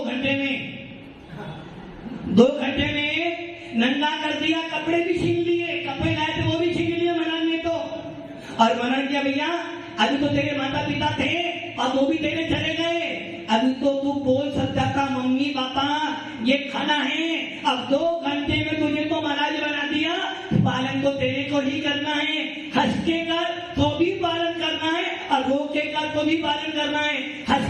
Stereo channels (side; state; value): both; identical; correlation 1.00